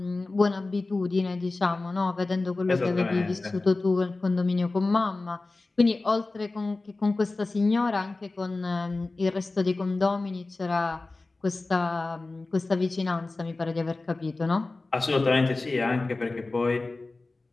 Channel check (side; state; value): right; quieter; 3.3 dB